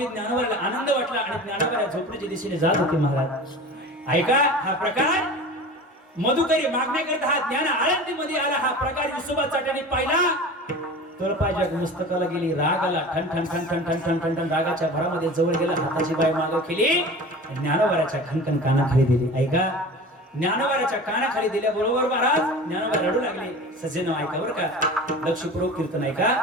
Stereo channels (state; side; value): normal; both; correlation 0.36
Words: ज्ञानोबाला आनंद वाटला आणि ज्ञानोबा झोपडीच्या दिशेने जात होते महाराज. ऐका, हा प्रकार मधुकरी मागण्याकरता हा ज्ञान आळंदीमध्ये आला. हा प्रकार विसोबा चाट्याने पाहिला. तळपायच्या मस्तकाला गेली, राग आला. ठण ठण ठण ठण ठण ठण ठण ठण रागाच्या भरामध्ये जवळ गेला, हाताची बाय मागं केली, ज्ञानोबाच्या खणखण कानाखाली दिली. ऐका, ज्ञानोबाच्या कानाखाली दिल्याबरोबर महाराज ज्ञानोबा रडू लागले. सज्जन ऐका बरं का, लक्षपूर्वक कीर्तन ऐका.